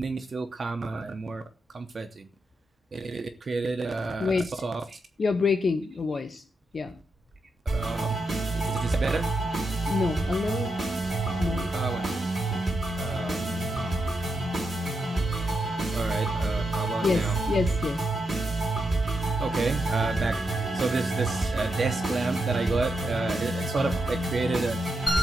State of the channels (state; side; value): normal; both; correlation 0.84